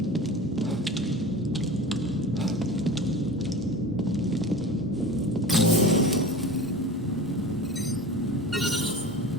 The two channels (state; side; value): normal; both; correlation 0.34